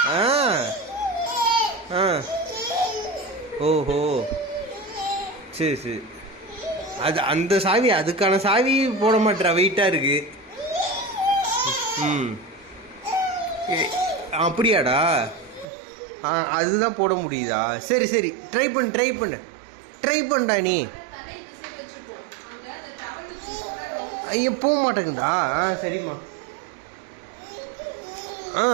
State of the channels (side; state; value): left; drops out; at 15.7 s